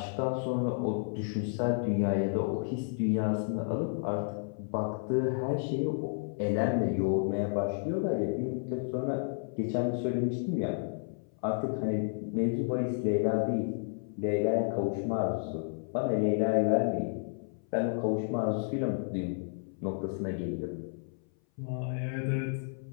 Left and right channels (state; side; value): silent; right; 57 dB below the other